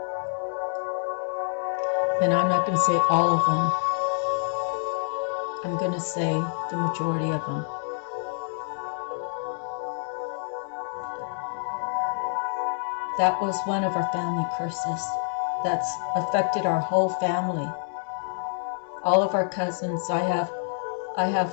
And I'm not going to say all of them. I'm going to say the majority of them. That was one of our family curses that's affected our whole family. All of our cousins. I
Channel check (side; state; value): right; silent; 60 dB below the other